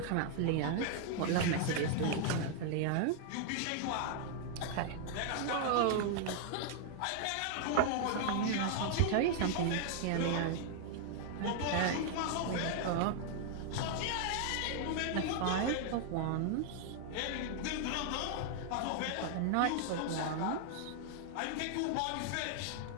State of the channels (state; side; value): different; both; correlation 0.00